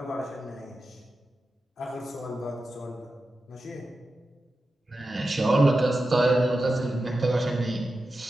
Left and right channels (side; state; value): both; normal; correlation 0.91